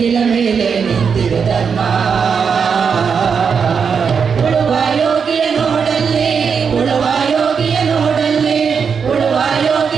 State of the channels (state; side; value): quieter; left; 6.3 dB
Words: ಮೇಲೆ ನಿಂತಿದೆ ಧರ್ಮ. ಉಳುವ ಯೋಗಿಯ ನೋಡಲ್ಲಿ ಉಳುವ ಯೋಗಿಯ ನೋಡಲ್ಲಿ ಉಳುವ